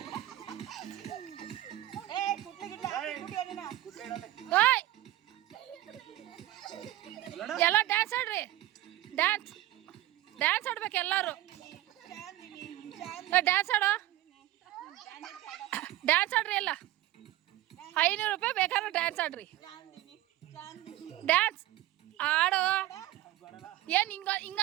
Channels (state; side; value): quieter; left; 15.4 dB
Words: ಎಲ್ಲ ಡ್ಯಾನ್ಸ್ ಆಡ್ರಿ, ಡ್ಯಾನ್ಸ್ ಡ್ಯಾನ್ಸ್ ಆಡ್ಬೇಕು ಎಲ್ಲರೂ. ಡ್ಯಾನ್ಸ್ ಆಡೋ, ಡ್ಯಾನ್ಸ್ ಆಡ್ರಿ ಎಲ್ಲ. 500 ರೂಪಾಯಿ ಬೇಕಾದ್ರೆ ಡ್ಯಾನ್ಸ್ ಆಡ್ರಿ. ಡ್ಯಾನ್ಸ್ ಆಡೋ. ಏನು